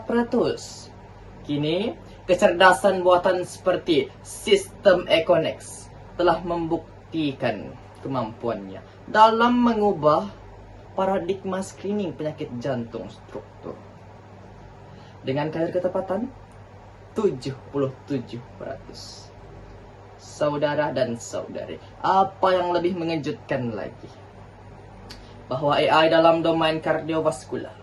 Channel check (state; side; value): identical; both; correlation 1.00